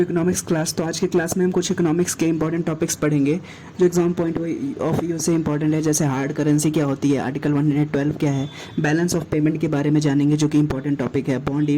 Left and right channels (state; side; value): identical; both; correlation 1.00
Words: economics class. तो आज के क्लास में हम कुछ इकोनॉमिक्स के इंपॉर्टेंट टॉपिक्स पढ़ेंगे जो एग्जाम पॉइंट ऑफ व्यू से इंपॉर्टेंट है। जैसे हार्ड करेंसी क्या होती है, आर्टिकल 112 क्या है, बैलेंस ऑफ पेमेंट के बारे में जानेंगे जो कि इंपॉर्टेंट टॉपिक है, बॉन्ड